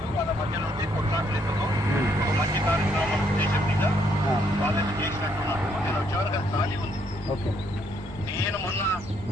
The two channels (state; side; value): normal; both; correlation 0.71